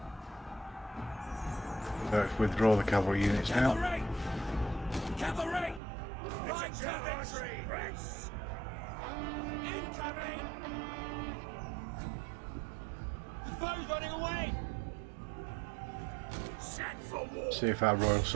Let's withdraw the cavalry units now. Cavalry! Cavalry! Right to victory! Press! Incoming! The foe's running away! Set for war! See if our royal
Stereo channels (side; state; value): left; drops out; at 5.8 s